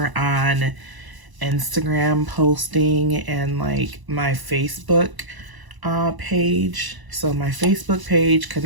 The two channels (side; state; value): left; late; 1.0 ms